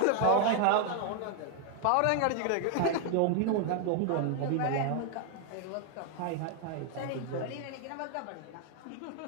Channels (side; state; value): both; different; correlation 0.00